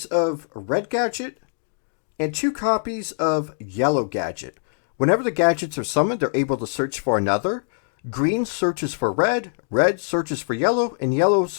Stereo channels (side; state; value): right; silent; digital silence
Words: of Red Gadget, and 2 copies of Yellow Gadget. Whenever the gadgets are summoned, they're able to search for another. Green searches for red, red searches for yellow, and yellow